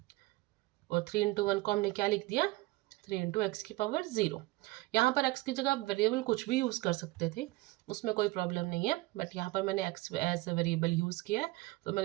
और 3 इंटू 1 को हमने क्या लिख दिया 3 इंटू एक्स की पावर 0। यहाँ पर x की जगह आप वेरिएबल कुछ भी यूज़ कर सकते थे, उसमें कोई प्रॉब्लम नहीं है, बट यहाँ पर मैंने x as a variable use किया है, तो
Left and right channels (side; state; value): left; quieter; 20.4 dB